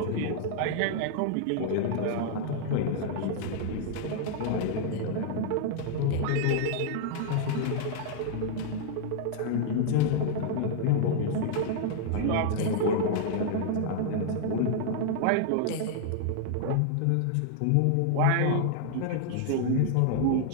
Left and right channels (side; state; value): both; different; correlation -0.01